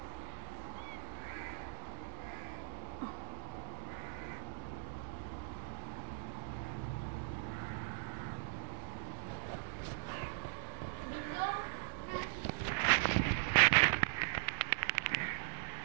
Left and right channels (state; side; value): silent; left; digital silence